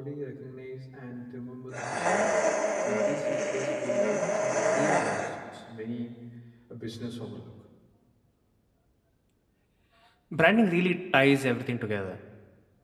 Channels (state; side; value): identical; both; correlation 1.00